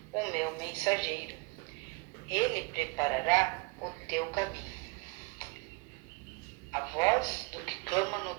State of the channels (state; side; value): quieter; left; 28.3 dB